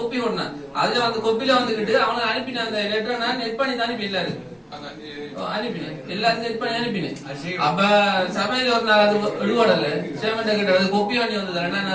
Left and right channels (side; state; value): both; identical; correlation 1.00